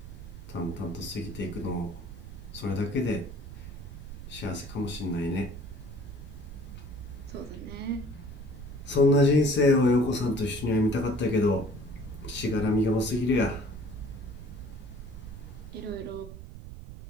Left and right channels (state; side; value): noise; right; rumble, 12 dB below the sound